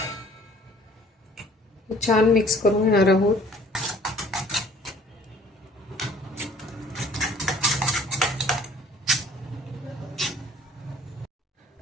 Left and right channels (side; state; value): both; normal; correlation 0.54